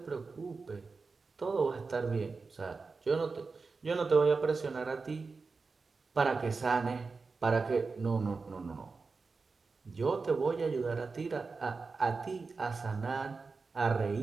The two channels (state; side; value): quieter; left; 4.3 dB